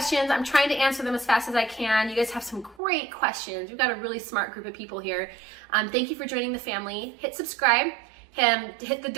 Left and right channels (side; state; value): left; drops out; at 2.8 s